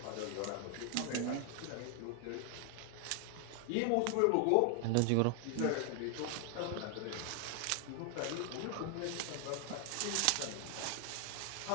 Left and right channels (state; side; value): different; both; correlation 0.01